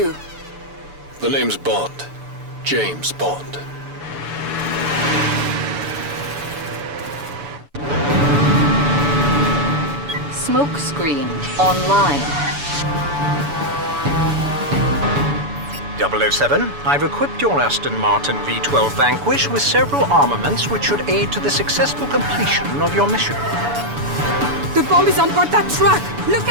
The name's Bond. James Bond. Smoke screen online. 007, I've equipped your Aston Martin V12 Vanquish with several armaments which should aid to the successful completion of your mission. The bomb is on board that truck! Look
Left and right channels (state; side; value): late; left; 7.0 ms